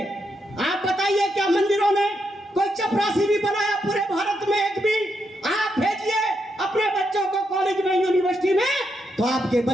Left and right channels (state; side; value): normal; both; correlation 0.81